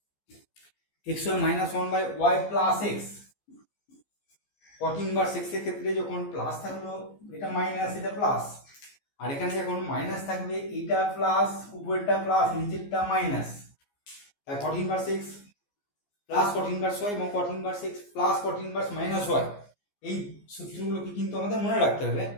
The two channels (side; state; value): right; late; 14 ms